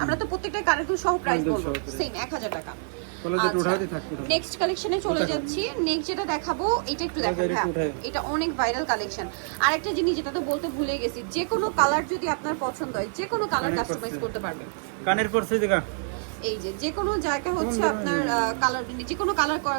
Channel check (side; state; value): left; silent; digital silence